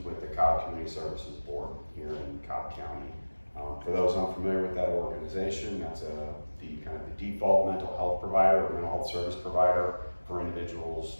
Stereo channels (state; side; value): inverted; both; correlation -1.00